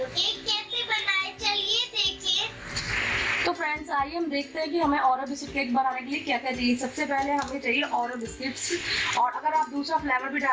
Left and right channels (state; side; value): identical; both; correlation 1.00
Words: केक कैसे बनाए चलिए देखिए। तो फ्रेंड्स आइए हम देखते हैं कि हमें ओरियो बिस्किट केक बनाने के लिए क्या क्या चाहिए। सबसे पहले हमें चाहिए ओरियो बिस्किट्स, और अगर आप दूसरा फ्लेवर भी